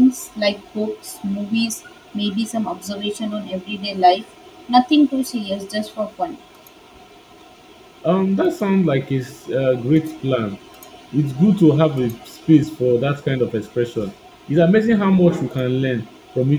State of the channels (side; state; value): both; identical; correlation 1.00